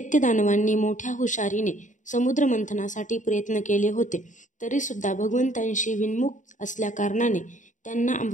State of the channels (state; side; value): late; right; 0.36 ms